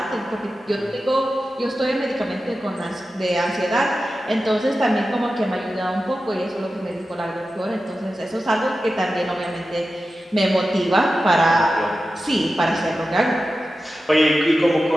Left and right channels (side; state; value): both; normal; correlation 0.93